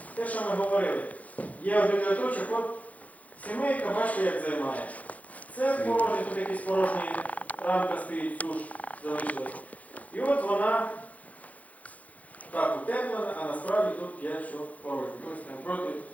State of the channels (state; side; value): late; right; 0.071 ms